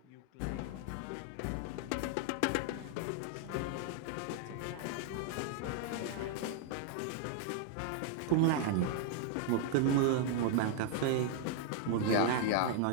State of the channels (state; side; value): different; both; correlation 0.00